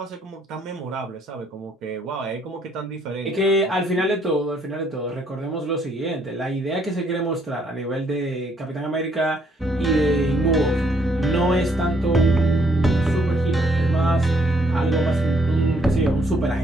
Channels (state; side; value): normal; both; correlation 0.68